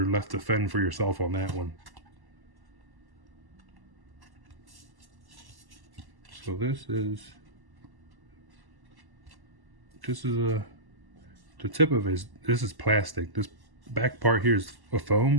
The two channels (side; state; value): left; late; 1.1 ms